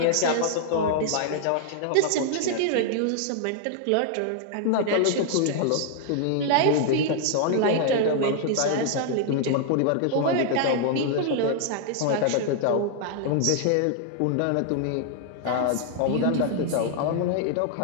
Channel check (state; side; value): different; both; correlation -0.01